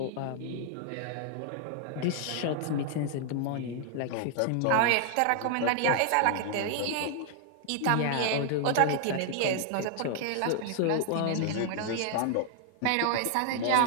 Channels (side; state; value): both; different; correlation 0.00